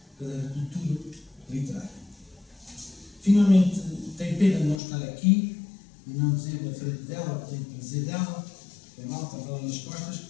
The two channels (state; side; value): drops out; right; at 4.8 s